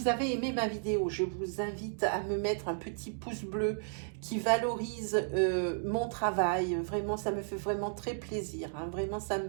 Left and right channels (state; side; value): silent; left; digital silence